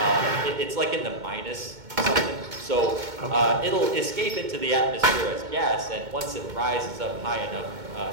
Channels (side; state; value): left; late; 2.2 ms